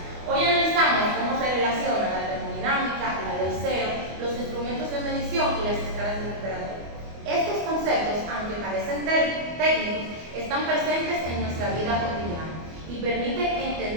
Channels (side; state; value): left; late; 24 ms